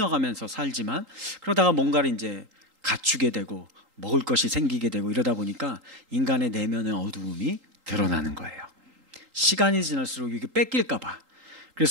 살지만 그러다가 뭔가를 이제 갖추게 되고 먹을 것이 생기게 되고 이러다 보니까 인간의 내면의 어두움이 드러나는 거예요. 시간이 지날수록 이게 뺏길까 봐.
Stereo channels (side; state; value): left; late; 3.8 ms